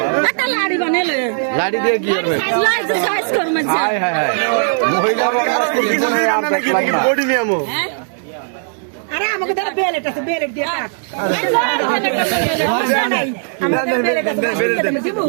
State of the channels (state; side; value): silent; left; digital silence